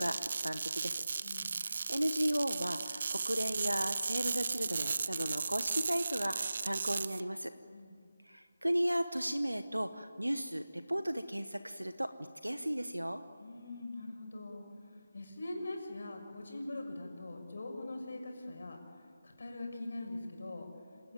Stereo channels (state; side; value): inverted; both; correlation -0.96